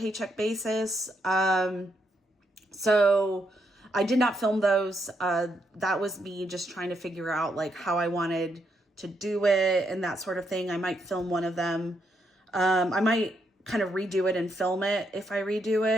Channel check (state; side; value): normal; both; correlation 0.78